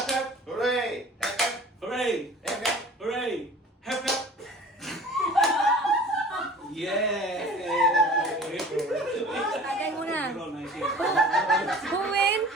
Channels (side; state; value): both; normal; correlation 0.44